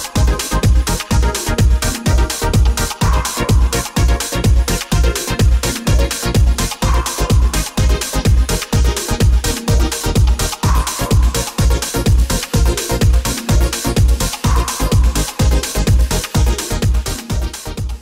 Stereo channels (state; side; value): identical; both; correlation 1.00